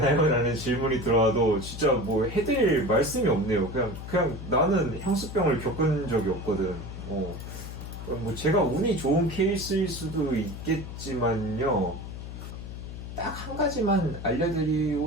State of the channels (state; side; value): noise; left; hum, 9 dB below the sound